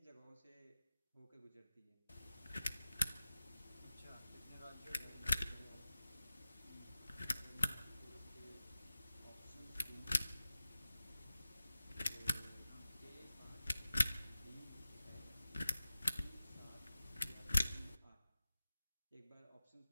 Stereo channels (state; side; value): inverted; both; correlation -0.94